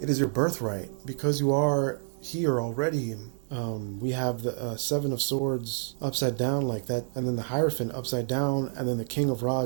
is your birthright. Because you are here already. We have the Seven of Swords upside down like that, and then the Hierophant upside down, and then the King of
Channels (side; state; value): left; silent; digital silence